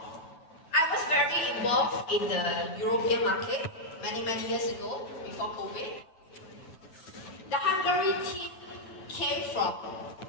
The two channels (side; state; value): right; late; 9.1 ms